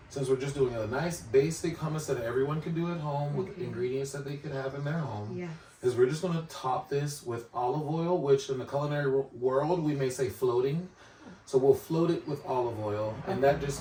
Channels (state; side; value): identical; both; correlation 1.00